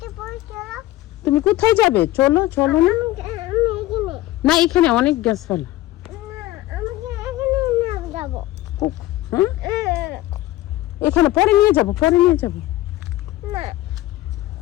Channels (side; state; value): right; quieter; 16.2 dB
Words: তুমি কোথায় যাবে? চলো, চলো না। না, এখানে অনেক গাছপালা। এখানে পরে নিয়ে যাবো, পরে নিয়ে যাবো।